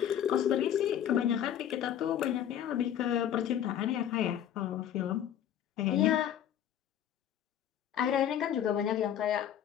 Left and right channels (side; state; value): right; quieter; 10.2 dB